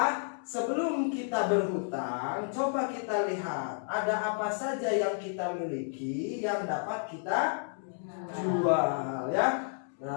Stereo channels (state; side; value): silent; right; digital silence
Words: sebelum kita berhutang, coba kita lihat ada apa saja yang kita miliki yang dapat kita jual ya.